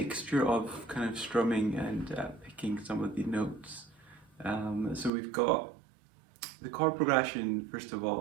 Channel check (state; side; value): drops out; left; at 5.1 s